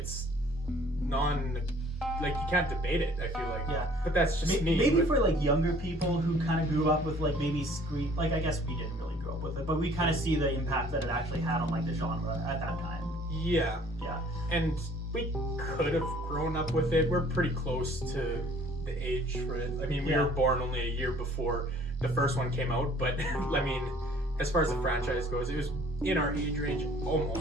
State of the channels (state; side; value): normal; both; correlation 0.55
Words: like, you can't debate it, I feel like. Yeah. But that's just me. Maybe for, like, younger people who kind of grew up with, like, maybe Scream. Like, I guess we didn't really grow up with it, but we kind of see the impact that it actually had on, like, the genre at that time. Yeah. Yeah. And we could have grown up with it. We're pretty close to the age for it. I mean, we were born only a year before the first one came out, but, I mean, as far as the franchise goes, it was in our age range